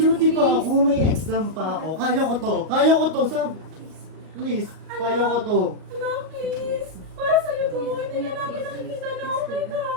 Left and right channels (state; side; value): late; left; 38 ms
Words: pa ako, may exam pa ako. Kaya ko to. Please, kaya ko to. Anak, please. Para sa'yo to. Hindi na namin nakikita na okay ka.